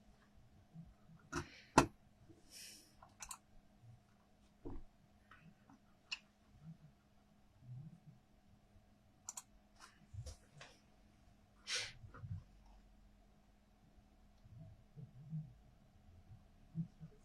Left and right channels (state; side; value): identical; both; correlation 1.00